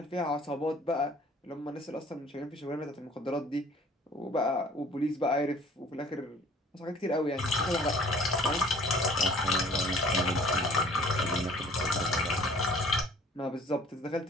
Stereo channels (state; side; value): normal; both; correlation 0.53